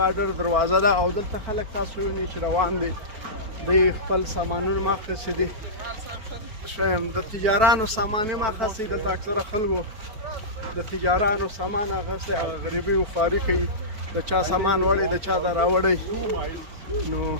دروازه ده او دلته خلک تاسو وینئ چې روان دي، دوی خپل سامانونه ماخذ دي. د تجارانو سامان یې ماخذ دي. دلته اکثره خلکو د تجارانو سامان اخیستی، هغه غریبي و خواري کوي، د چا سامان وړی د چا د راوړی. نو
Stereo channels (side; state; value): left; late; 4.5 ms